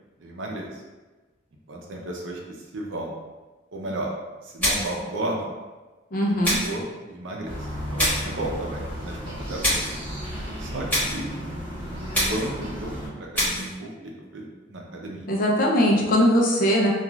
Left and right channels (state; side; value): normal; both; correlation 0.38